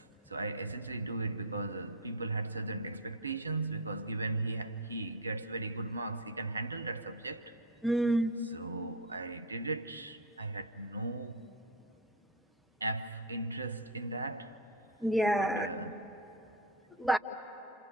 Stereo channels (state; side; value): normal; both; correlation 0.09